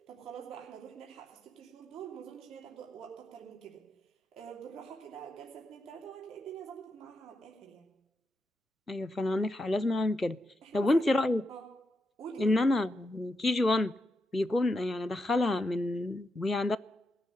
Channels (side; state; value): both; normal; correlation 0.85